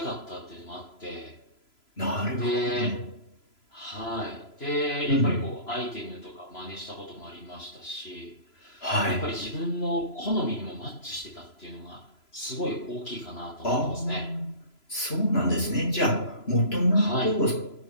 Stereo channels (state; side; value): late; right; 3.0 ms